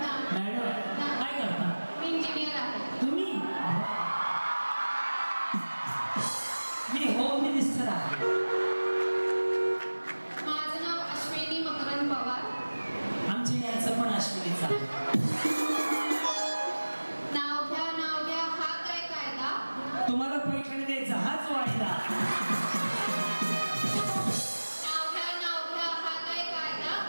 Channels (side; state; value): both; inverted; correlation -1.00